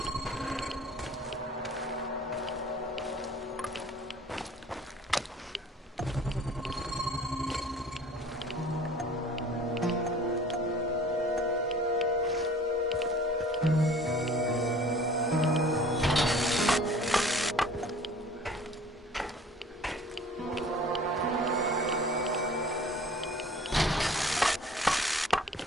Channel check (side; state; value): both; normal; correlation 0.48